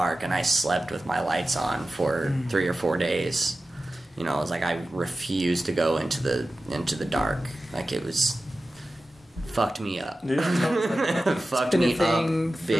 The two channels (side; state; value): both; normal; correlation 0.94